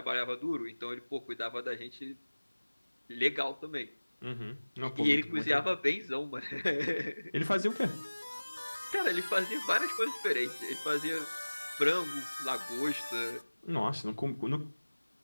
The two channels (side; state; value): both; inverted; correlation -1.00